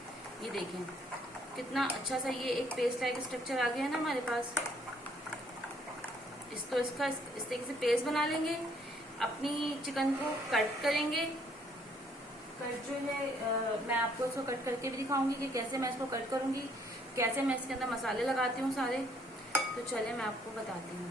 ये देखें कितना अच्छा सा ये एक पेस्ट लाइक स्ट्रक्चर आ गया है ना हमारे पास। इसको इस तरीके से पेस्ट बना लेंगे। अपनी चिकन को कट करेंगे। कट जो है मैं आपको इसको कट करके भी दिखाऊंगी कि कैसे मैं इसको कट करूंगी, कैसे मैं इसके अंदर मसाले लगाती हूँ सारे। तो चले मैं आपको बताती हूँ।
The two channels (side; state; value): both; normal; correlation 0.65